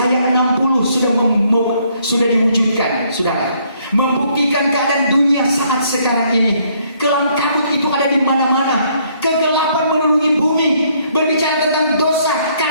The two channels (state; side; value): inverted; both; correlation -0.67